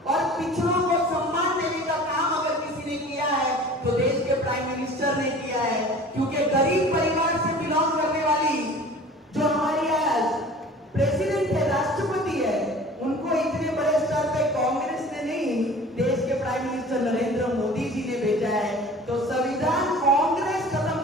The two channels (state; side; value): normal; both; correlation 0.43